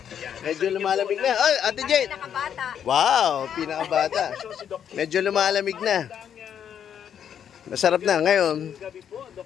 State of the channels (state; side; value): quieter; right; 8.8 dB